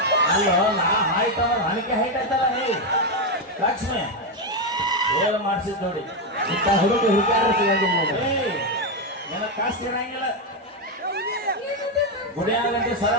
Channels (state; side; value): normal; both; correlation 0.06